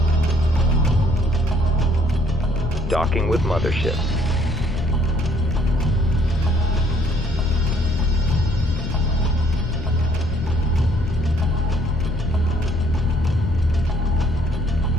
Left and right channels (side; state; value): left; noise; rumble, 5 dB below the sound